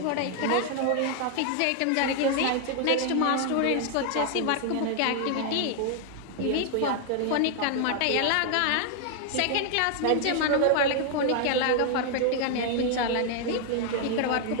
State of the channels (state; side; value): different; both; correlation 0.00